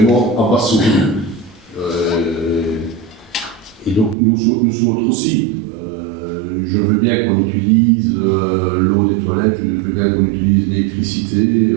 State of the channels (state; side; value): drops out; left; at 4.2 s